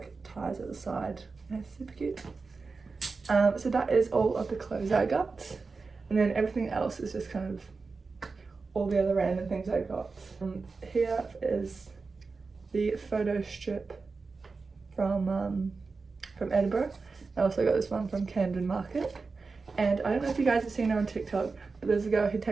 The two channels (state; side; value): quieter; left; 4.3 dB